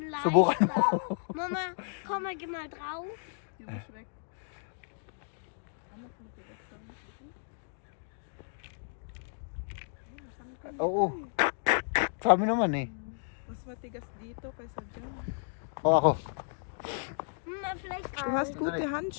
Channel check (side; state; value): right; silent; digital silence